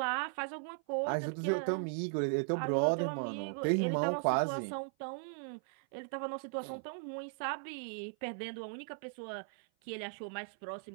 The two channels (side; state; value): left; silent; 53 dB below the other